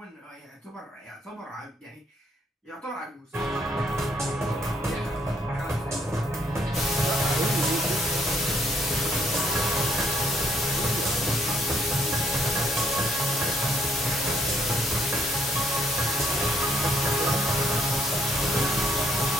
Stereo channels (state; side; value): normal; both; correlation 0.69